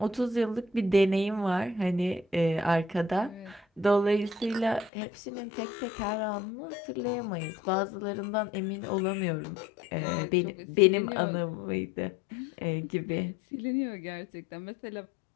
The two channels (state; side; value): drops out; right; at 4.9 s